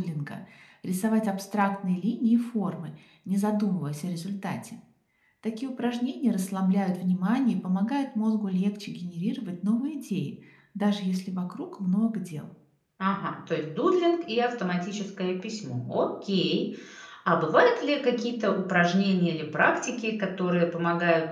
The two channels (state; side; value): identical; both; correlation 1.00